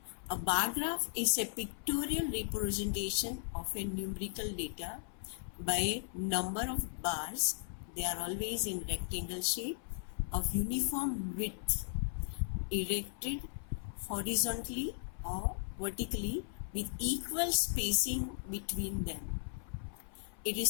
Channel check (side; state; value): right; silent; 53 dB below the other